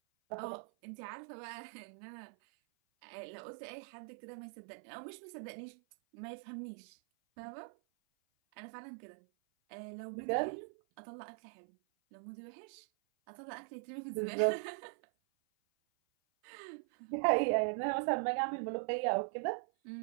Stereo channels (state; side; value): silent; left; 50 dB below the other